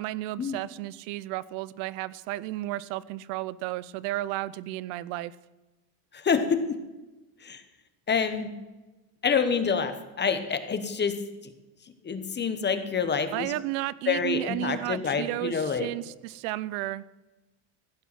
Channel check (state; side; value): normal; both; correlation 0.09